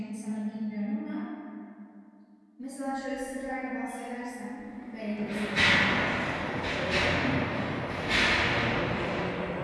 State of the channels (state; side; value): identical; both; correlation 1.00